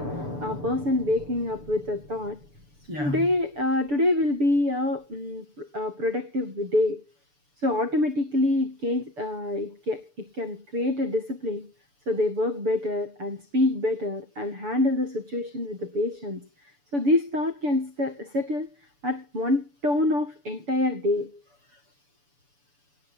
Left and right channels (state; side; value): late; left; 6.9 ms